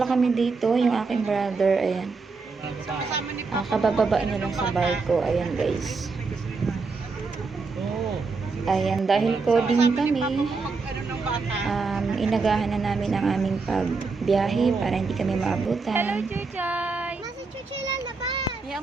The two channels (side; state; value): left; quieter; 4.3 dB